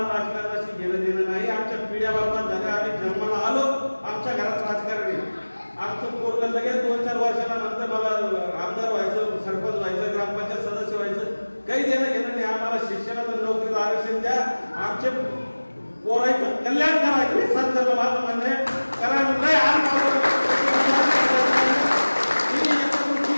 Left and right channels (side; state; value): both; inverted; correlation -1.00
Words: राजकारणाशी घेणं देणं नाही. आमच्या पिढ्या बाबा झाल्या, आम्ही जन्माला आलो, आमच्या घरात राजकारण आहे. आमचं पोरगं लगेच 2-4 वर्षाला नंतर मला आमदार व्हायचं, सरपंच व्हायचं, ग्रामपंचायत सदस्य व्हायचं, काही देणं घेणं नाही. आम्हाला शिक्षणाचं नोकरीचं आरक्षण द्या, आमचे पोराचं कल्याण करा. हे सरकारला माझं म्हणणं आहे. कारण नाही